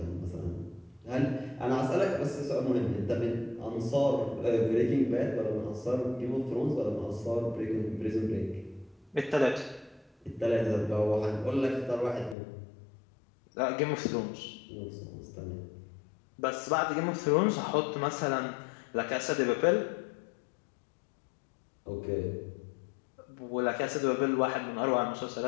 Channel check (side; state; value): right; drops out; at 12.4 s